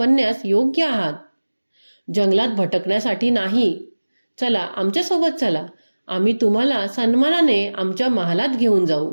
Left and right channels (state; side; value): inverted; both; correlation -1.00